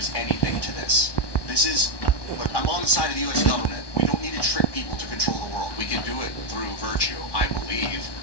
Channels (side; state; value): right; late; 1.2 ms